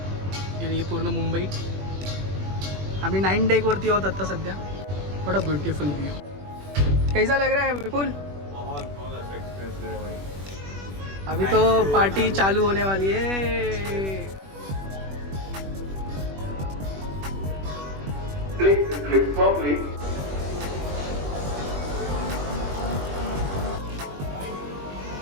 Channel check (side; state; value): left; late; 21 ms